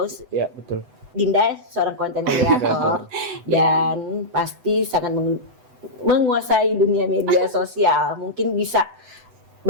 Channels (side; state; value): left; late; 7.9 ms